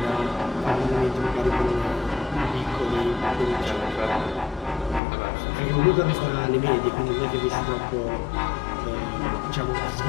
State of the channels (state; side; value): drops out; right; at 5.0 s